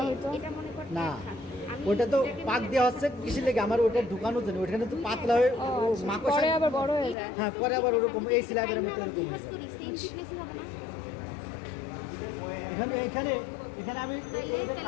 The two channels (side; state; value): right; drops out; at 7.2 s